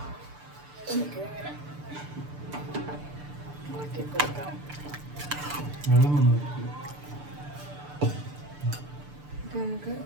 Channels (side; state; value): left; late; 6.8 ms